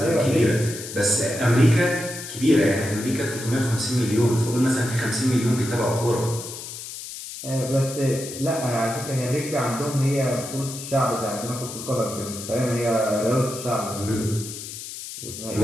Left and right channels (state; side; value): noise; left; hiss, 10 dB below the sound